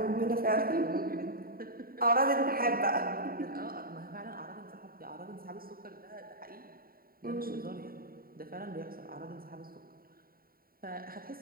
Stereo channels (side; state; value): left; late; 0.43 ms